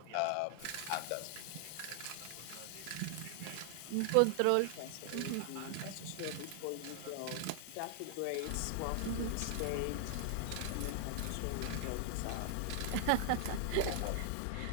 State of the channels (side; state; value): both; different; correlation 0.00